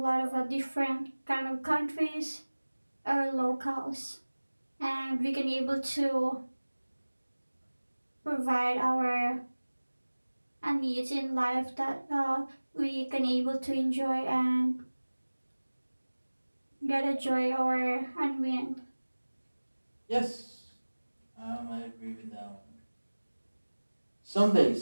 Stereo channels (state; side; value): inverted; both; correlation -1.00